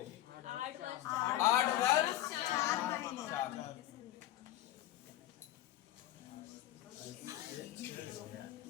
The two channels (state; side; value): quieter; right; 13.9 dB